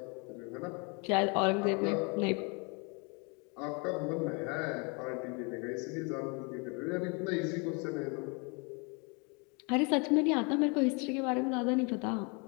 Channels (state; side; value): quieter; right; 32.6 dB